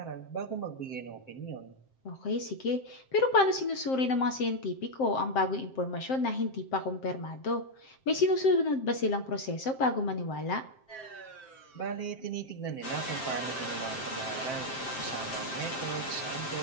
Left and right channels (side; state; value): right; late; 7.6 ms